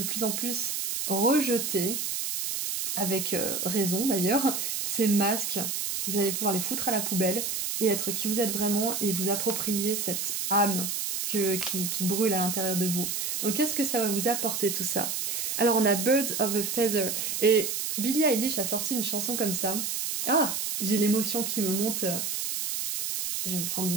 plus en plus rejeter, avec raison d'ailleurs, ces masques. Vous allez pouvoir les foutre à la poubelle et être qui vous êtes vraiment et vous approprier cette âme qui brûle à l'intérieur de vous. Donc qu'est-ce que ça va vous apporter tout ça? Alors on a Birds of a Feather et Billie Eilish a sorti une chanson comme ça. Ah, j'ai l'émotion qui me monte. Je vais me prendre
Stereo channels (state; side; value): noise; right; hiss, 2 dB below the sound